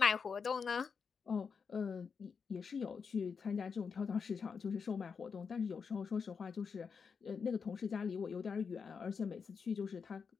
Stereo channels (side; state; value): right; quieter; 5.8 dB